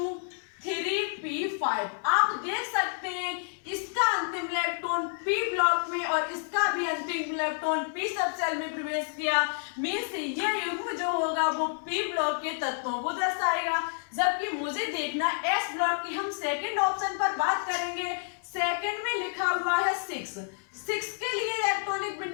3p5। आप देख सकते हैं इसका अंतिम इलेक्ट्रॉन p ब्लॉक में और इसका भी अंतिम इलेक्ट्रॉन p सब सेल में प्रवेश किया, मींस ये युग्म जो होगा वो p ब्लॉक के तत्वों को दर्शाएगा। जबकि मुझे देखना s ब्लॉक की, हम सेकंड ऑप्शन पर बात करेंगे। सेकंड में लिखा हुआ है 6 के लिए इलेक्ट्रॉनिक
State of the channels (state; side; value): silent; right; digital silence